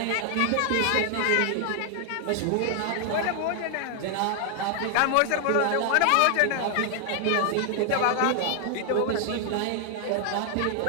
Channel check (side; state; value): both; different; correlation 0.00